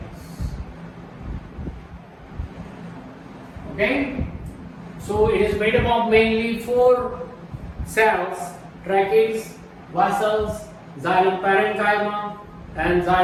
Okay, so it is made up of mainly 4 cells: trachees, vessels, xylem parenchyma, and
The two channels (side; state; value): both; identical; correlation 1.00